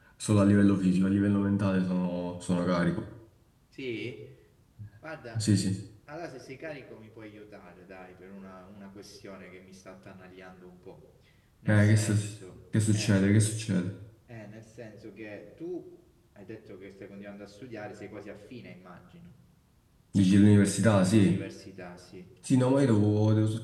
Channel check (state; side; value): identical; both; correlation 1.00